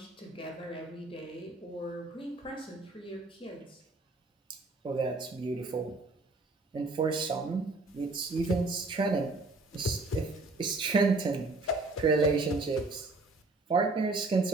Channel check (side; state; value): left; quieter; 3.2 dB